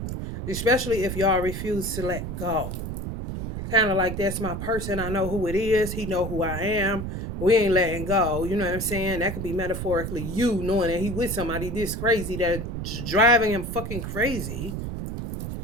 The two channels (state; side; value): noise; right; rumble, 5 dB below the sound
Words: Especially if y'all refuse to let go. Kind of like, that's my person. I know who it is. He know who I am. We ain't letting go. You know what I'm saying? That could be metaphorically you knowing that he with somebody this crazy that's driving him fucking crazy.